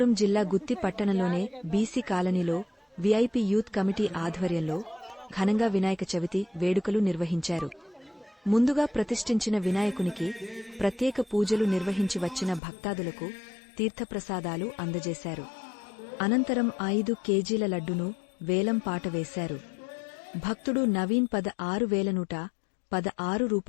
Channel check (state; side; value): drops out; right; at 12.6 s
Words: జిల్లా గుత్తి పట్టణంలోనే బీసీ కాలనీలో VIP youth committee ఆధ్వర్యంలో ఘనంగా వినాయక చవితి వేడుకలు నిర్వహించారు. ముందుగా ప్రతిష్ఠించిన వినాయకునికి ప్రత్యేక పూజలు నిర్వహించి వచ్చిన భక్తాదులకు తీర్థప్రసాదాలు అందజేశారు. అనంతరం 5 కేజీల లడ్డును వేలం పాట వేశారు. భక్తుడు నవీన్ 16,116